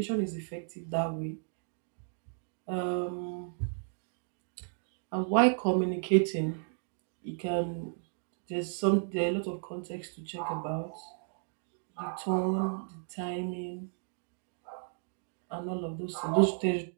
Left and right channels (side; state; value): left; silent; digital silence